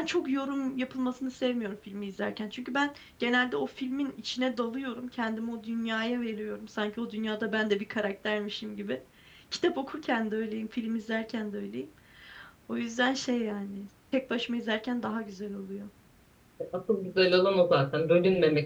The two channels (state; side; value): identical; both; correlation 1.00